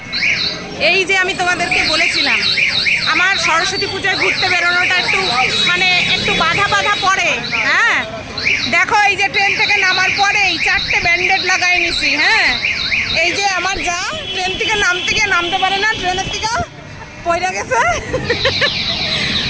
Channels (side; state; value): both; identical; correlation 1.00